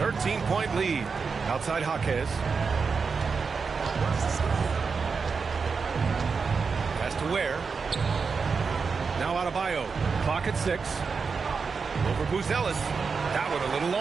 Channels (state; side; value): quieter; left; 5.2 dB